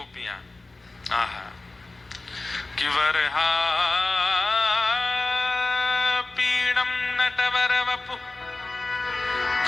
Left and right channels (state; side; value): quieter; right; 3.2 dB